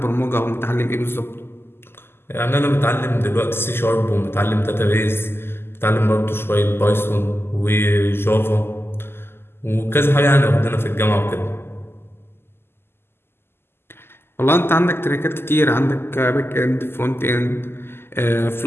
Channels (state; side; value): late; right; 0.12 ms